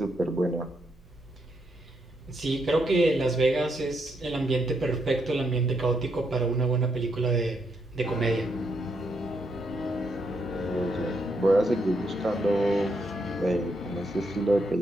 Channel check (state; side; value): normal; both; correlation 0.79